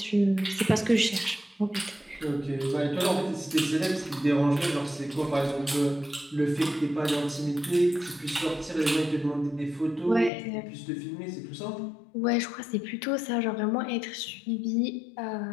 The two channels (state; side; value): drops out; right; at 10.3 s